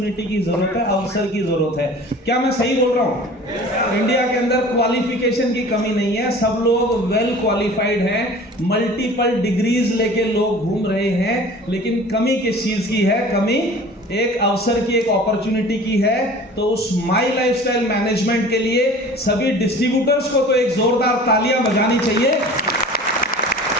की ज़रूरत है, अवसर की ज़रूरत है। क्या मैं सही बोल रहा हूँ? इंडिया के अंदर क्वालिफिकेशन की कमी नहीं है, सब लोग वेल क्वालिफाइड हैं, मल्टीपल डिग्रीज लेके लोग घूम रहे हैं, लेकिन कमी किस चीज़ की है? कमी एक अवसर की, एक अपॉर्चुनिटी की है। तो उस माई लाइफस्टाइल मैनेजमेंट के लिए सभी डिस्ट्रीब्यूटर्स को तो एक जोरदार तालियां बजानी चाहिए,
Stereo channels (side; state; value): both; normal; correlation 0.43